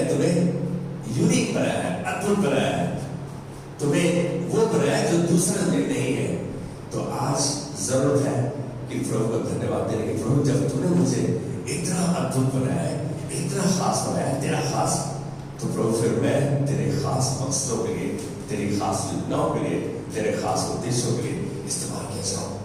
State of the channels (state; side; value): identical; both; correlation 1.00